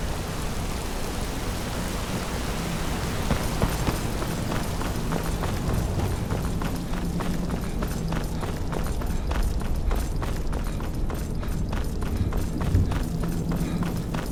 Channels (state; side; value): identical; both; correlation 1.00